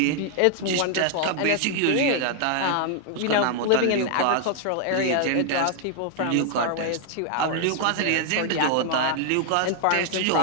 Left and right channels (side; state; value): both; different; correlation 0.00